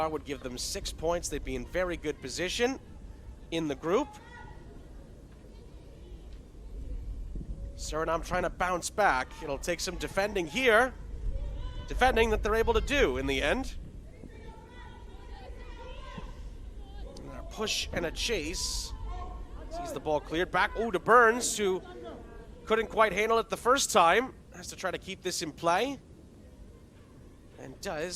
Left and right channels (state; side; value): identical; both; correlation 1.00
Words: would give them 6 points. They'd be in very good position in the group. Suriname trying to bounce back. It'll take some defending here. Defending that they're able to do in the end. And a push and a chase. Sees the ball cleared back. Oh, to Burns, who couldn't quite handle it the first time. Has to try to keep this in play. and